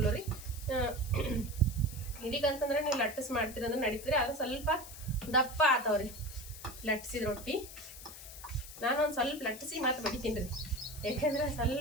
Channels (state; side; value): noise; left; hiss, 14 dB below the sound